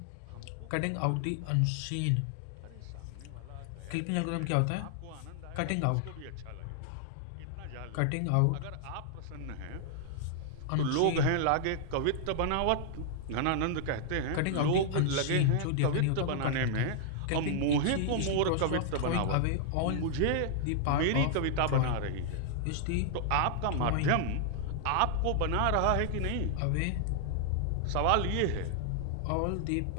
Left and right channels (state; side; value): different; both; correlation -0.01